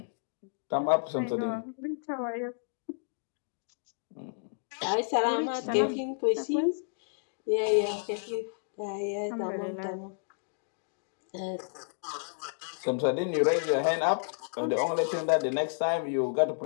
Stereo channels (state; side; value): silent; right; digital silence